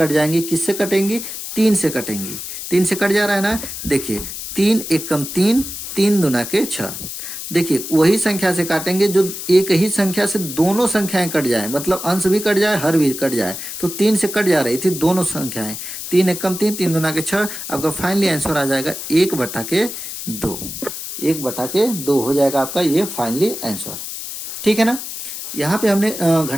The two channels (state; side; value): noise; left; hiss, 8 dB below the sound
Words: जाएंगी। किससे कटेंगी, 3 से कटेंगी। 3 से कट जा रहा है ना, देखिए 3 एक कम 3, 3 दूना के 6। देखिए वही संख्या से काटेंगे जो एक ही संख्या से दोनों संख्याएं कट जाए, मतलब अंश भी कट जाए, हर भी कट जाए। तो 3 से कट जा रही थी दोनों संख्याएं, 3 एक कम 3, 3 दूना के 6। आपका फाइनली आंसर आ जाएगा 1/2। 1/2 हो जाएगा आपका ये फाइनली आंसर। ठीक है ना, यहाँ पे हमने